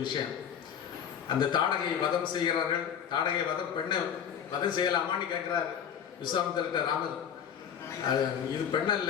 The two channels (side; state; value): right; quieter; 8.4 dB